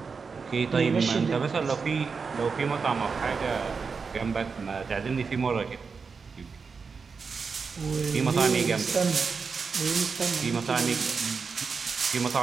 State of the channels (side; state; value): left; quieter; 5.2 dB